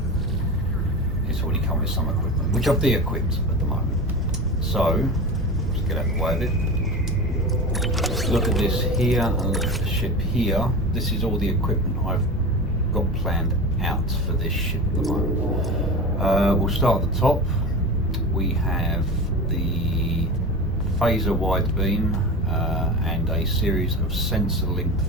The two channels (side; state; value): both; normal; correlation 0.28